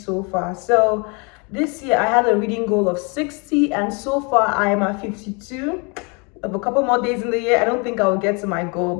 far. So this year I had a reading goal of 60 and so far I am at 52. Of a couple more days in the year, I don't think I'll get to my goal,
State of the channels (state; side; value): quieter; right; 32.1 dB